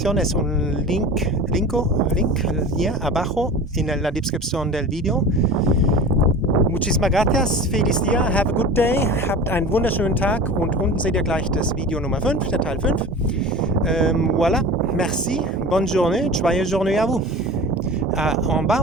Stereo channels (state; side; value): normal; both; correlation 0.35